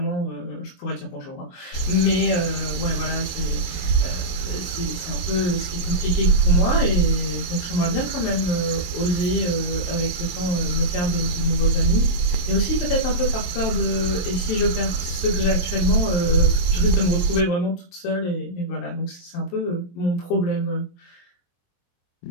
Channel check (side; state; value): right; late; 22 ms